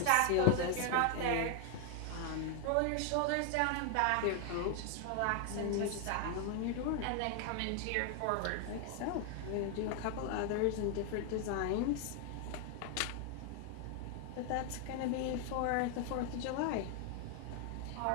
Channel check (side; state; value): both; different; correlation 0.00